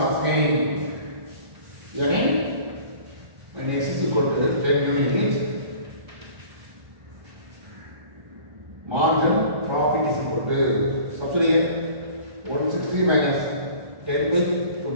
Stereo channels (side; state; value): left; late; 1.3 ms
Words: asking? Again, when x is equal to 10 units, marginal profit is equal to, substitute here, 160 minus 10 by